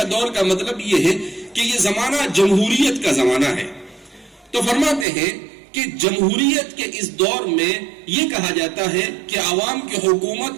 دور؟ کا مطلب یہ ہے کہ یہ زمانہ جمہوریت کا زمانہ ہے. تو فرماتے ہیں کہ جمہوریت کے اس دور میں یہ کہا جاتا ہے کہ عوام کی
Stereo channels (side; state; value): left; drops out; at 5.1 s